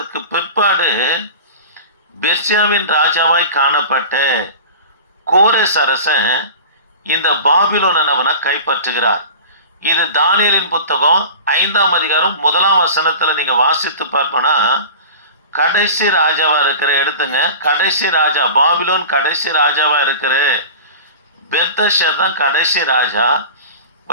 பிற்பாடு பெர்சியாவின் ராஜாவாய் காணப்பட்ட கோரேஸ் அரசன் இந்த பாபிலோனை நம்மனா கைப்பற்றுகிறார். இது தானியேலின் புத்தகம் 5ஆம் அதிகாரம் 1ஆம் வசனத்துல நீங்க வாசித்து பார்ப்போனா கடைசி ராஜாவா இருக்கிற, எடுத்துங்க, கடைசி ராஜா, பாபிலோன் கடைசி ராஜாவா இருக்கிற பெல்தஷர் தான் கடைசி ராஜா.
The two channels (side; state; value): both; inverted; correlation -0.35